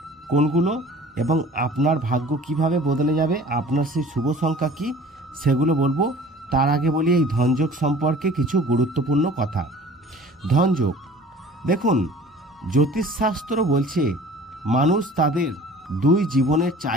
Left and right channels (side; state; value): both; normal; correlation 0.46